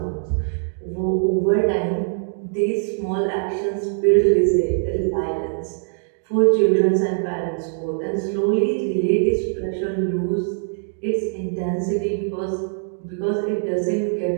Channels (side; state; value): left; silent; digital silence